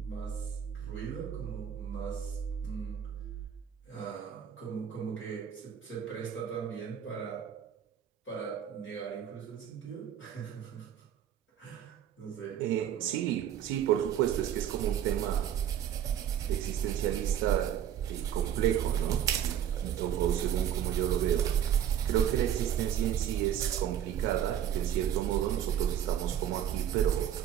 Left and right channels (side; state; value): left; quieter; 9.9 dB